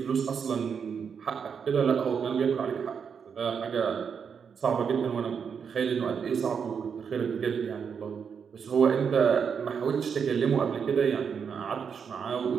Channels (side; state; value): left; quieter; 6.7 dB